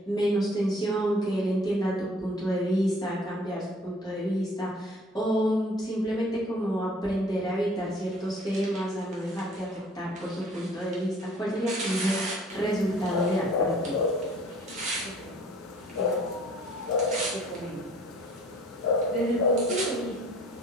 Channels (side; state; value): both; normal; correlation 0.53